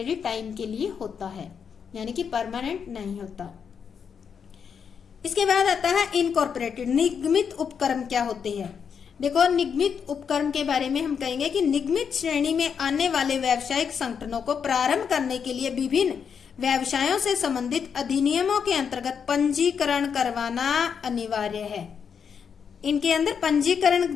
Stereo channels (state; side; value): quieter; right; 6.9 dB